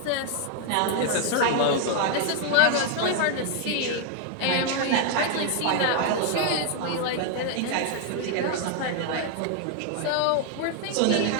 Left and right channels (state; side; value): different; both; correlation 0.00